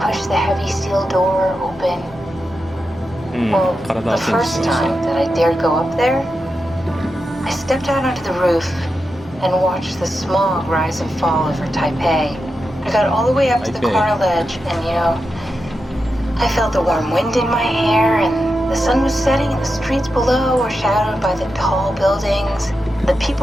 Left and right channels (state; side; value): normal; both; correlation 0.88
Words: the heavy steel door open. うん、 Well, 体 the チェンジし first ました。 time that I dared go up there, I stepped out onto the roof and watched the smog rise and fall over Taipei. I got all the way up to the Taipei. corner ledge and, I felt the warm wind in my hair and the sun was setting and the streets below were shadowed by the tall buildings. The